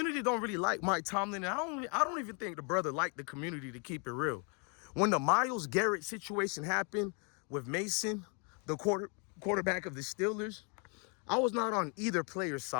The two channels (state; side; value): quieter; right; 36.2 dB